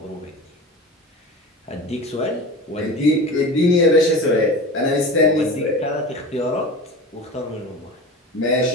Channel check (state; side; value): normal; both; correlation 0.32